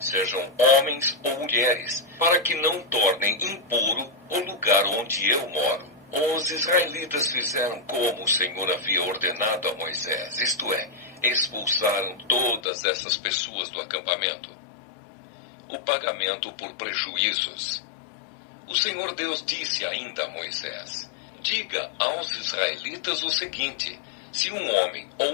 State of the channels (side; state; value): right; drops out; at 12.6 s